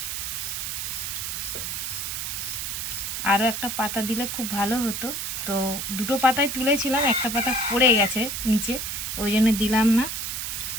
আরও একটা পাতা দিলে খুব ভালো হতো, তো দুটো পাতায় তুলেছিলাম, একটা পাতা পড়ে গেছে নিচে, ওই জন্য দিলাম না।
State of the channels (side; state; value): right; noise; hiss, 3 dB below the sound